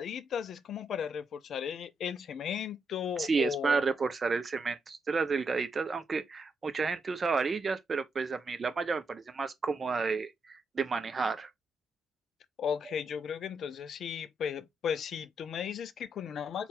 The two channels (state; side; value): normal; both; correlation 0.80